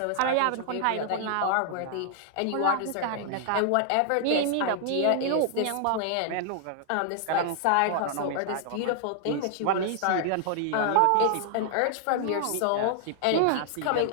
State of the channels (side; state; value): both; different; correlation -0.01